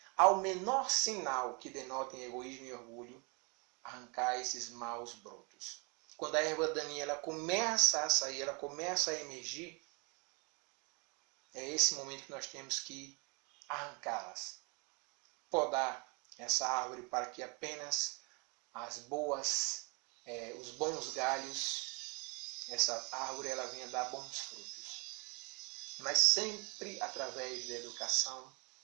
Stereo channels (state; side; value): quieter; left; 31.7 dB